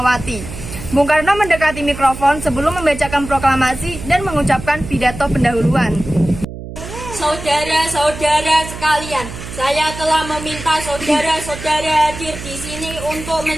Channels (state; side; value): noise; right; hum, 11 dB below the sound